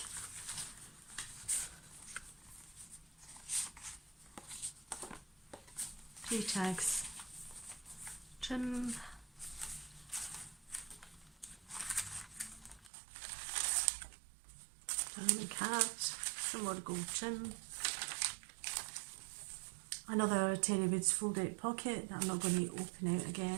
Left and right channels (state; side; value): drops out; left; at 12.9 s